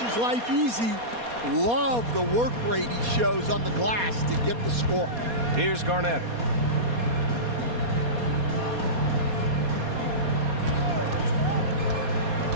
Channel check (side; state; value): left; late; 4.2 ms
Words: life easy. Love the work rate he shows on the glass to get the score. Here's Garnett.